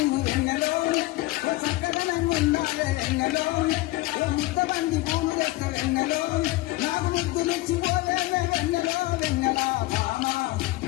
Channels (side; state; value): right; quieter; 19.3 dB